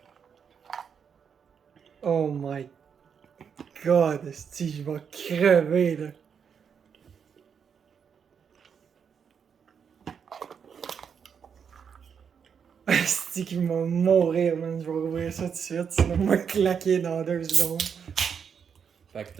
Oh my god, esti, je vais crever là! Esti qui va mourir, man. Je vais ouvrir ça tout de suite, sinon on va claquer dans 2 secondes. Fait que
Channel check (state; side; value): quieter; left; 7.0 dB